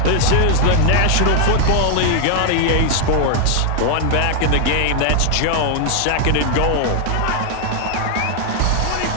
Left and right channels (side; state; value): both; different; correlation 0.01